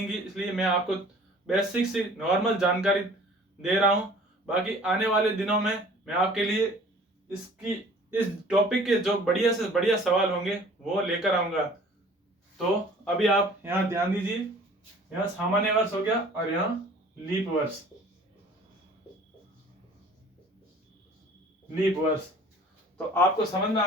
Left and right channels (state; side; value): normal; both; correlation 0.49